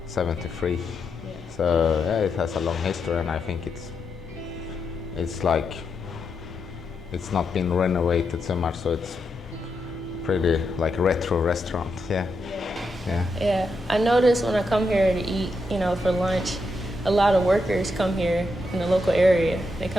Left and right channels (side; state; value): both; normal; correlation 0.83